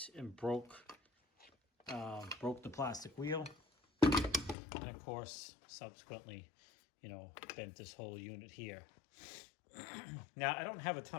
and broke the plastic wheel, and of course subsequently, bent this whole unit here. Now I don't have a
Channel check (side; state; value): right; drops out; at 4.5 s